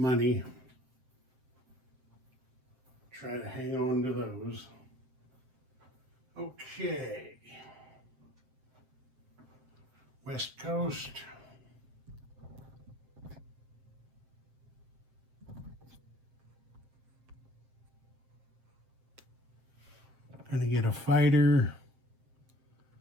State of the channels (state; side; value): late; left; 7.7 ms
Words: Try to hang on to those. Okay. West Coast. Gonna get a fighter